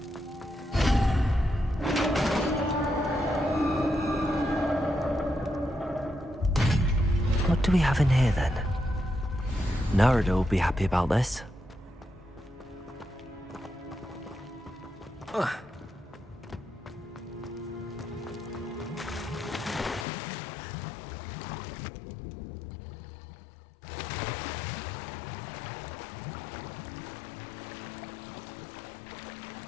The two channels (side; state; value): right; drops out; at 20.1 s